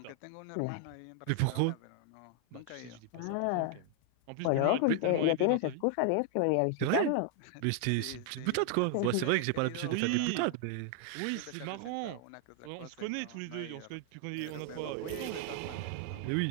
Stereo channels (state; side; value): different; both; correlation 0.00